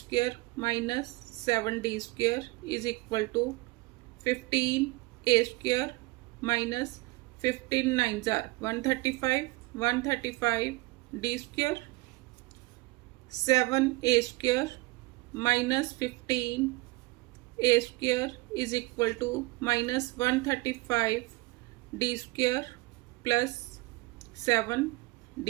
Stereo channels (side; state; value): left; quieter; 22.3 dB